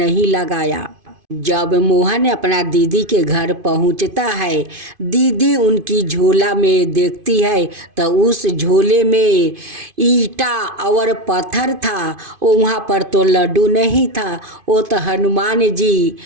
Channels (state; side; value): late; left; 2.5 ms